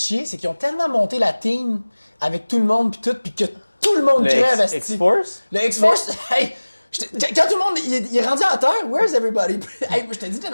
c'est qu'ils ont tellement monté la team avec tout le monde puis tout, puis que tout le monde crève, esti. X-Force? Le X-Force, hey, Quand tout le monde il est rendu à terre, where's everybody? Hey, je t'ai dit, t'es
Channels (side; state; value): both; inverted; correlation -1.00